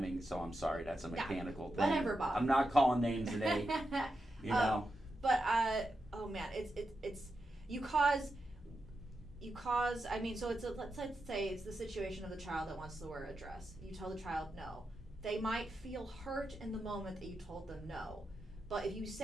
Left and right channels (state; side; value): normal; both; correlation 0.87